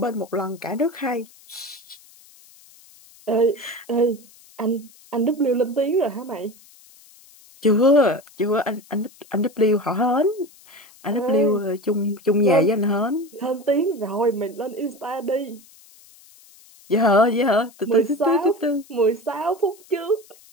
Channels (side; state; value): left; noise; hiss, 25 dB below the sound